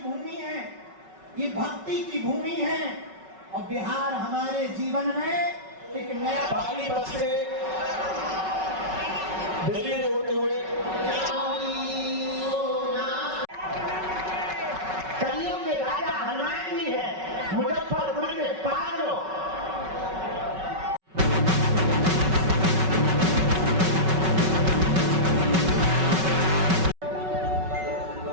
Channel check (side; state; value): left; late; 5.3 ms